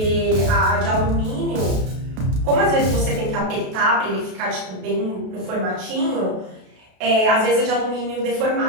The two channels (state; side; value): late; left; 32 ms